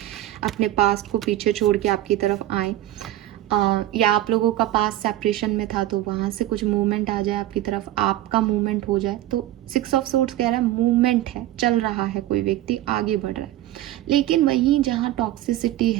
अपने पास्ट को पीछे छोड़ के आपकी तरफ आए। या आप लोगों का पास सेपरेशन में था तो वहाँ से कुछ मूवमेंट आ जाए आपकी तरफ, आपका मूवमेंट हो जाए। तो 6 ऑफ सोर्ड्स कह रहा है मूवमेंट है, चल रहा है, कोई व्यक्ति आगे बढ़ रहा है। लेकिन वहीं जहाँ टॉक्सिसिटी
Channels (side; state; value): left; quieter; 14.2 dB